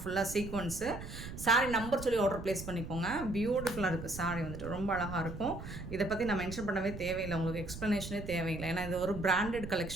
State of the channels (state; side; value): noise; right; rumble, 10 dB below the sound